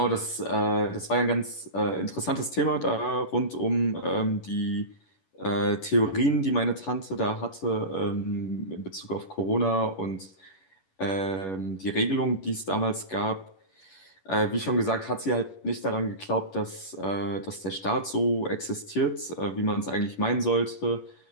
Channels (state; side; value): late; right; 11 ms